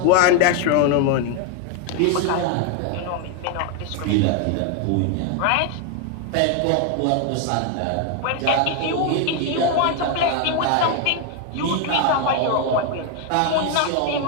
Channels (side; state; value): both; different; correlation 0.01